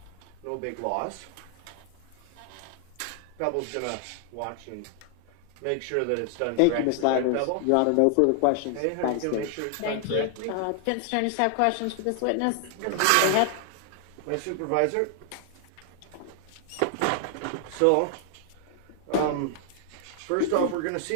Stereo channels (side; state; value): both; different; correlation 0.00